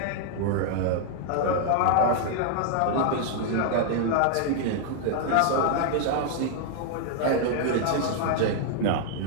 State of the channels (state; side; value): different; both; correlation -0.01